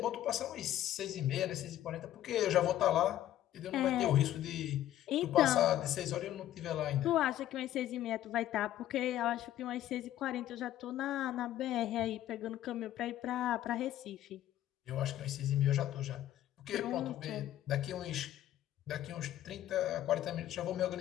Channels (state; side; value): quieter; right; 12.8 dB